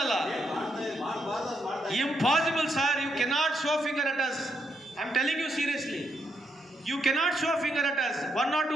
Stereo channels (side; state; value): both; normal; correlation 0.78